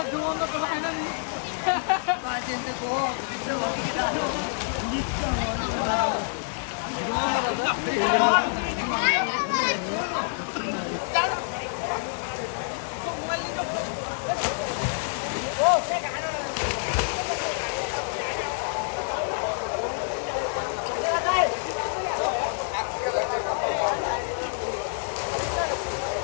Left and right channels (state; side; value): silent; right; digital silence